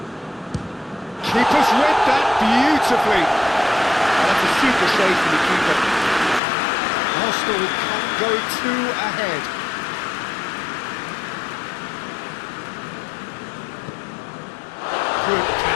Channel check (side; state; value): right; drops out; at 6.4 s